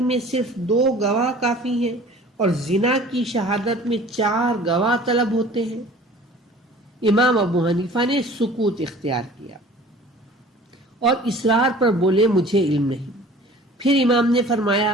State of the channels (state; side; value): normal; both; correlation 0.47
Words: میں صرف 2 گواہ کافی ہیں اور زنا کی شہادت میں 4 گواہ طلب ہوتے ہیں؟ امام ابو حنیفہ نے سکوت اختیار کیا اور اصرار پر بولے مجھے علم نہیں۔ پھر امام نے